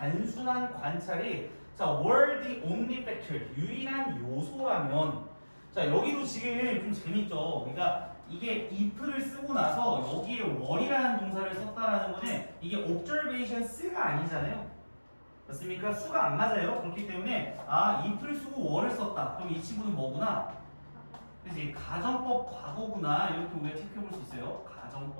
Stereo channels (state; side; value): inverted; both; correlation -1.00